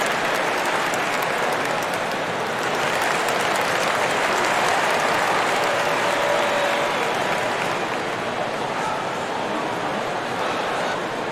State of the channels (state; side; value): identical; both; correlation 1.00